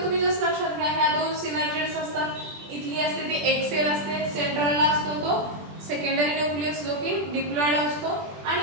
तुम्ही जस्ट लक्षात घ्या, ह्या 2 सिनर्जिड्स असतात. इथली असते ती एक सेल असते, सेंट्रलला असतो तो सेकंडरी न्यूक्लियस जो की डिप्लॉइड असतो,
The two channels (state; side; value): late; left; 20 ms